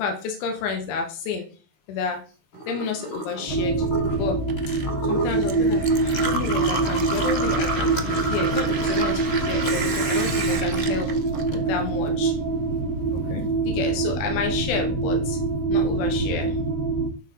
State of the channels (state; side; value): late; right; 15 ms